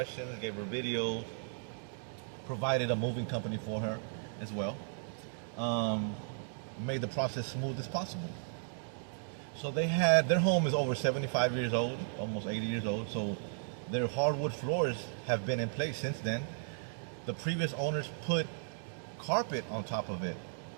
gave her video, provided a moving company for her as well. Made the process smooth as possible. So their home is over 75 years old, almost 80 years old. So their hardwood floors have been in place since then. The previous owners put carpet on top of it.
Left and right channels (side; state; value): left; silent; digital silence